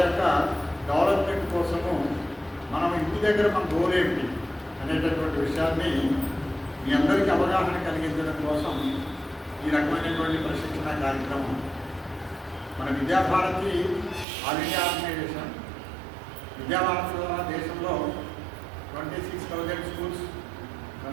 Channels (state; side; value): drops out; left; at 14.2 s